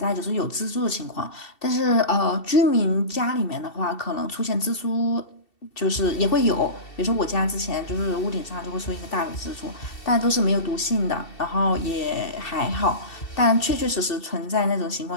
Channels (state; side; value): late; right; 2.7 ms